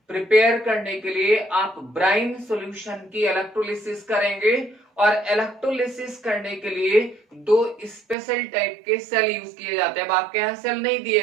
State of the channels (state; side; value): drops out; left; at 8.2 s